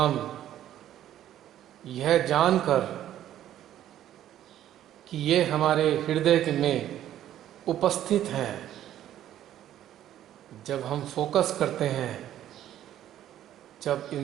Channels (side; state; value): left; quieter; 11.9 dB